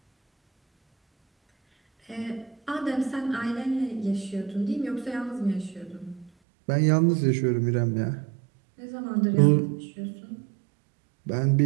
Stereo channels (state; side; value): drops out; left; at 6.3 s